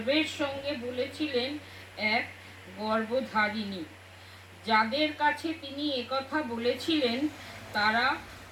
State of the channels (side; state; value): both; identical; correlation 1.00